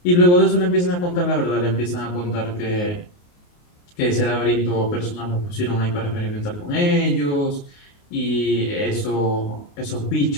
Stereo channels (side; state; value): right; late; 28 ms